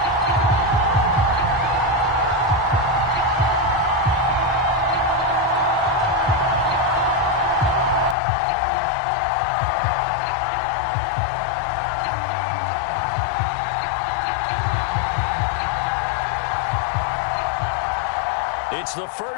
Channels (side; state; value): right; drops out; at 8.2 s